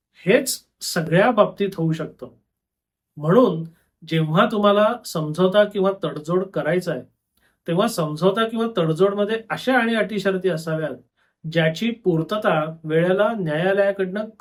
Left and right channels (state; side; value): identical; both; correlation 1.00